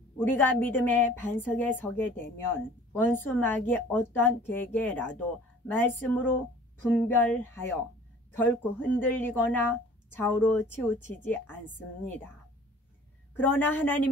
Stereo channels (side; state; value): both; normal; correlation 0.49